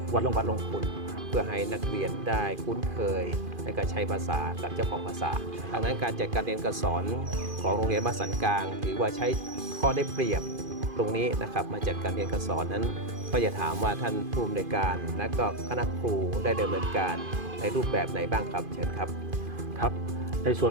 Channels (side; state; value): left; late; 2.5 ms